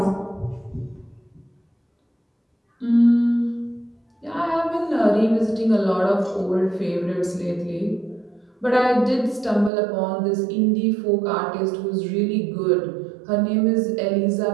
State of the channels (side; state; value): left; drops out; at 9.7 s